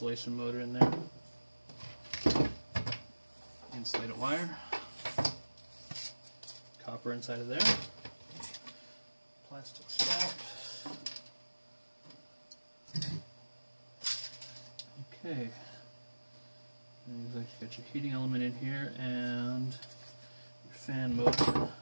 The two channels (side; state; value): both; inverted; correlation -1.00